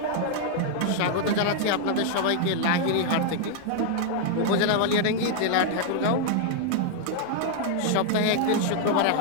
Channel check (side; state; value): both; different; correlation 0.00